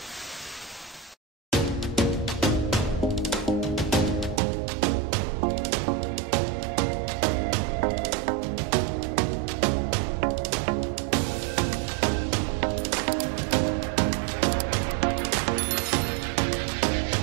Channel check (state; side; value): drops out; left; at 4.4 s